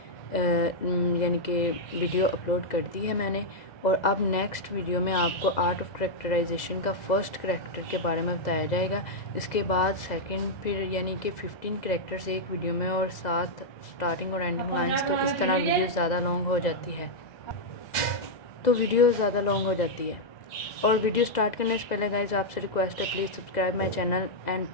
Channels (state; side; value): late; right; 2.0 ms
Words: یعنی کہ ویڈیو اپلوڈ کر دی ہے میں نے. اور اب نیکسٹ ویڈیو میں آپ کو آرٹ آف کریکٹرائزیشن کا فرسٹ کریکٹر کے بارے میں بتایا جائے گا. اس کے بعد سیکنڈ، پھر یعنی کہ 15 کریکٹرز ایک ویڈیو میں اور ساتھ اسٹارٹنگ اور اینڈنگ لائنس. تو اس طرح ویڈیو زیادہ لانگ ہو جاتی ہے اور ویڈیو سٹارٹ کرنے سے پہلے گائز آپ سے ریکویسٹ ہے please subscribe my channel and